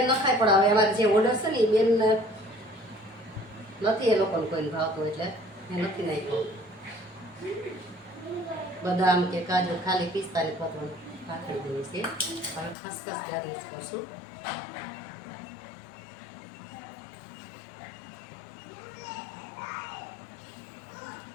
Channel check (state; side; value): drops out; right; at 12.8 s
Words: ન ખાય, પણ હવે અમારે જે ઓર્ડર છે ને એ બેન નથી, એ લોકોને કોઈને ભાવતું એટલે મેં નથી નાખ્યું. બદામ કે કાજુ ખાલી પિસ્તાની પતવાનું પાથરી દેવી છે. હવે ખસખસ ગાર્નિશ કરશું.